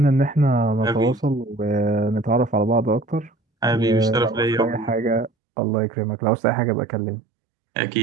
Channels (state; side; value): drops out; left; at 5.3 s